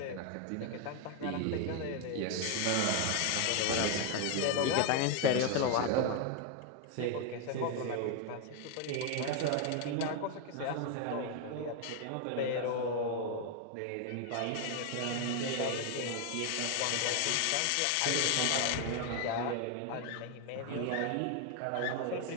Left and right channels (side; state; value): both; different; correlation 0.01